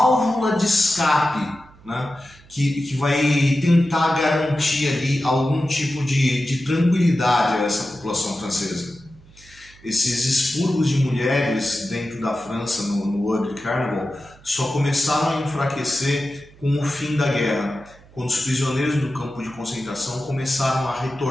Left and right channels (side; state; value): right; noise; hum, 25 dB below the sound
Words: de escape, né? que vai tentar garantir ali algum tipo de tranquilidade a essa população francesa. Esses expurgos de mulheres dentro da França no Ugly Carnival só começaram a enfraquecer com o fim da guerra, quando os prisioneiros do campo de concentração começaram a